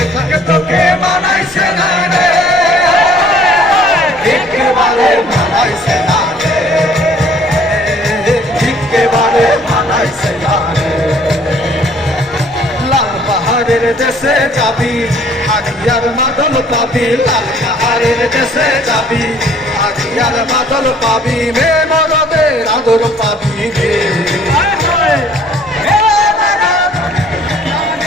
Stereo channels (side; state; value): both; normal; correlation 0.57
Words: থাকে তোকে মানাইছে না রে একেবারে মানাইছে না রে একেবারে মানাইছে না রে লাল পাহাড়ের দেশে যাবি হারিয়ার মাদল পাবি লাল পাহাড়ের দেশে যাবি হারিয়ার মাদল পাবি মে মরদের আদর পাবি রে